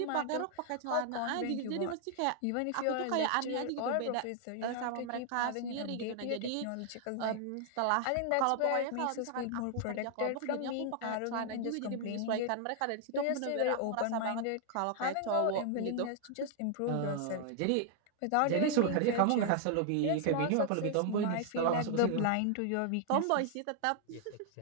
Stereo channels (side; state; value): both; different; correlation 0.00